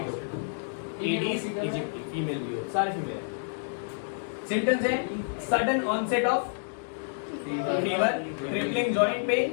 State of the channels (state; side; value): silent; right; digital silence